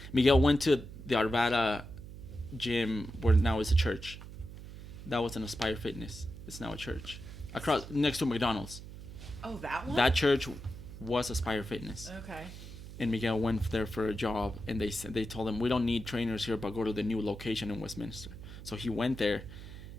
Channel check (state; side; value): noise; right; hum, 13 dB below the sound